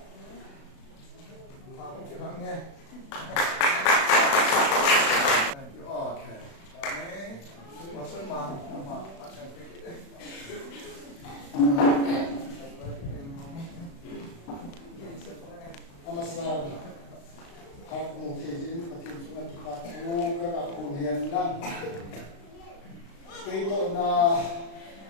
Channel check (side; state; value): right; late; 36 ms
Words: pa ko ke bang ne thank you okay amen pastor ma asan pe ke Namaskar. Hak mungkin patin sungai tuhan tu kerana kuliah nan. Kita na